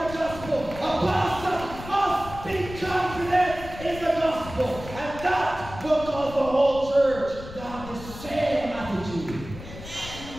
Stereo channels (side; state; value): left; noise; rumble, 13 dB below the sound